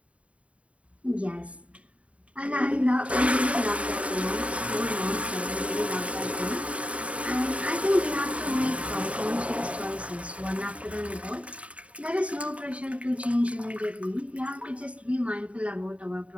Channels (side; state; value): left; late; 0.064 ms